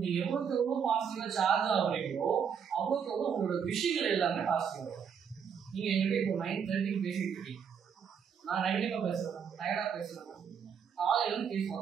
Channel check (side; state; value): left; quieter; 7.2 dB